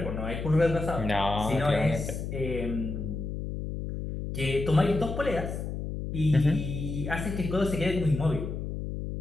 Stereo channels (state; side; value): noise; left; hum, 5 dB below the sound